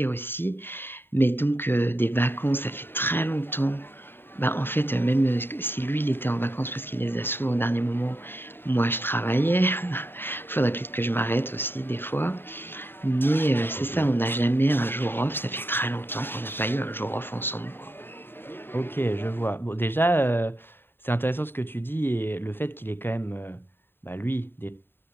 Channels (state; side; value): late; right; 0.10 ms